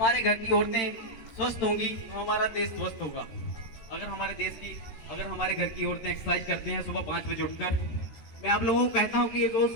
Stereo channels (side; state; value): right; late; 13 ms